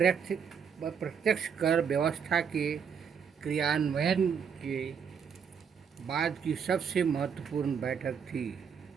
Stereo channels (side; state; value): left; quieter; 7.0 dB